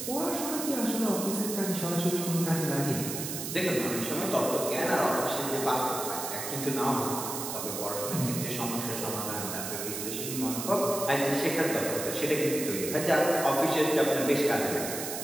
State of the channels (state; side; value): noise; right; hiss, 5 dB below the sound